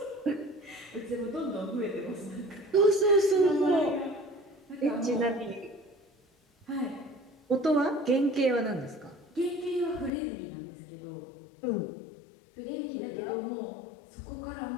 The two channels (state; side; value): drops out; right; at 10.1 s